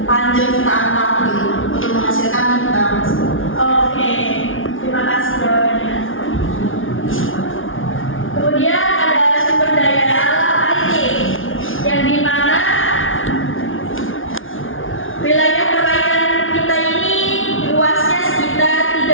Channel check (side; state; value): right; late; 0.58 ms